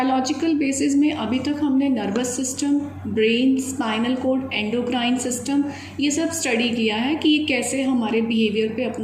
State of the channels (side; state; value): both; identical; correlation 1.00